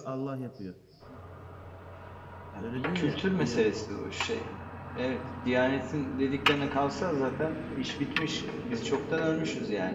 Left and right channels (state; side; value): identical; both; correlation 1.00